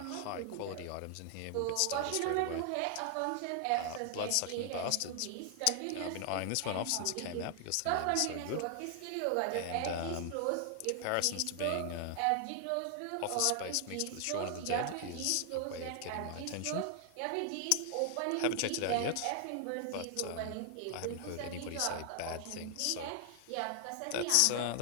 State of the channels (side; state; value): both; different; correlation 0.00